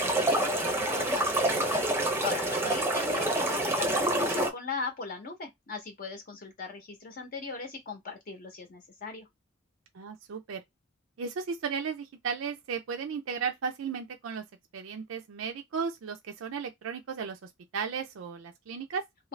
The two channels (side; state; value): both; normal; correlation 0.19